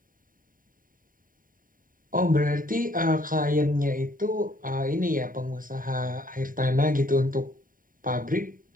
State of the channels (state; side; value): late; left; 0.40 ms